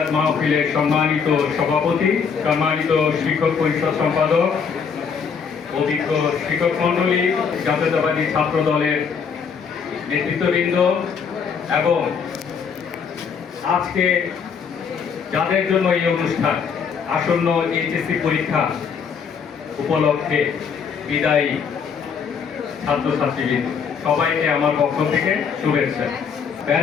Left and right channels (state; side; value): quieter; right; 6.4 dB